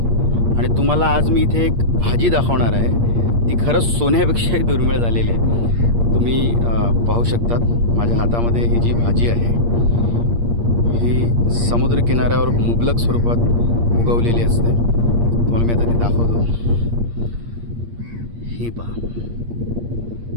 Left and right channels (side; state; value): left; late; 8.6 ms